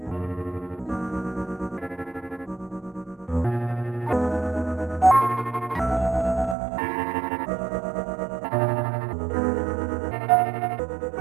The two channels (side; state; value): left; drops out; at 6.6 s